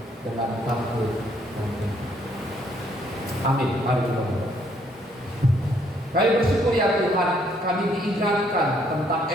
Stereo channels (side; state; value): both; normal; correlation 0.68